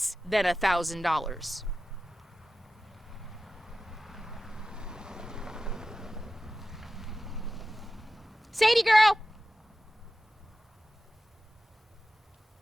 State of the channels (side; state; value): both; normal; correlation 0.94